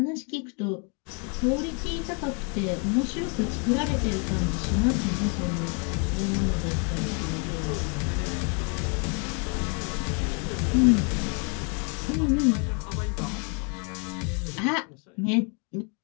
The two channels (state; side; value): quieter; right; 37.4 dB